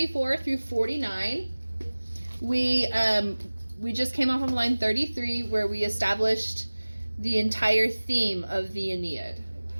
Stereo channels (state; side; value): inverted; both; correlation -1.00